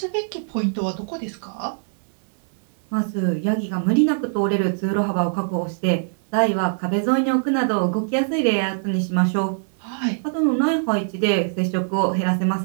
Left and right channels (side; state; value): left; silent; digital silence